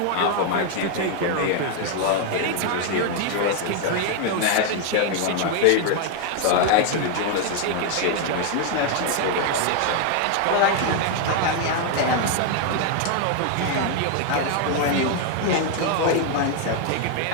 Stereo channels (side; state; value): both; different; correlation 0.00